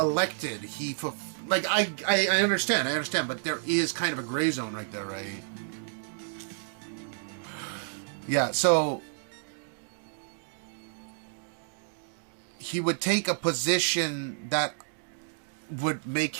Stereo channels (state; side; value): silent; left; digital silence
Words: I understand, but there is kind of a gray zone right there, right? Yeah, so he would take a position that would make